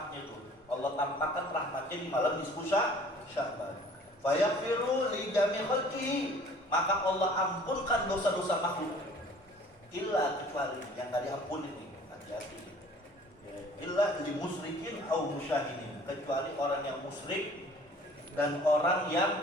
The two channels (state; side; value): normal; both; correlation 0.51